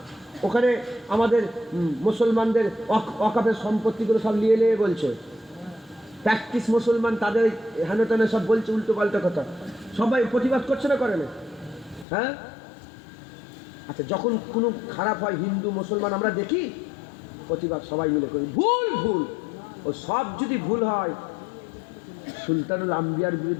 ওখানে আমাদের মুসলমানদের ওয়াকফের সম্পত্তিগুলো সব নিয়ে বলছে, প্র্যাকটিস মুসলমান তাদের হেন তেন সব বলছে উল্টো পাল্টা কথা। সবাই প্রতিবাদ করছে না, করে না? হ্যাঁ, আচ্ছা, যখন কোনো খারাপ হয় হিন্দু মুসলমান আমরা দেখি প্রতিবাদ সবাই মিলে করি, ভুল। ও সব যদি ভুল হয়, সুলতানুল আম্বিয়ার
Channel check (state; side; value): drops out; right; at 12.1 s